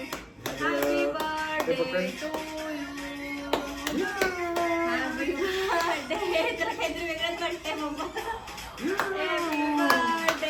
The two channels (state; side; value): identical; both; correlation 1.00